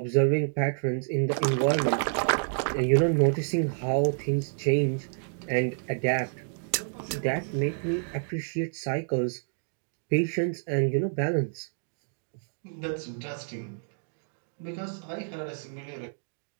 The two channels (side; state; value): left; silent; digital silence